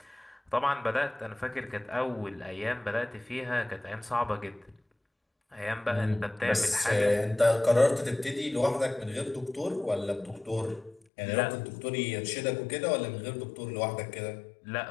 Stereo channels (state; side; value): drops out; right; at 11.0 s